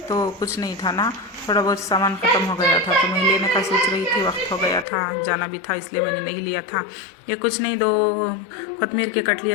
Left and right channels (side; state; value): right; drops out; at 4.9 s